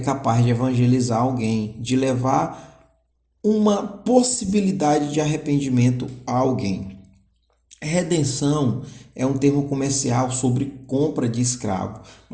de evangelizar alguém, de levar uma possibilidade de arrependimento a alguém. Redenção é um termo comercial sobre compra de escravo,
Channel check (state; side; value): identical; both; correlation 1.00